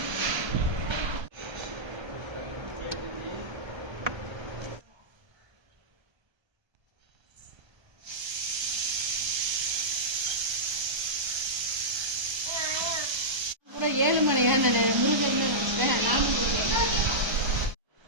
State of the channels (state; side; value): late; left; 1.3 ms